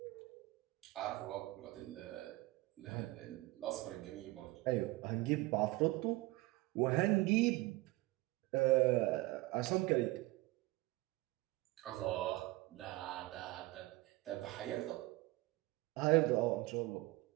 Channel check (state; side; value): quieter; left; 20.4 dB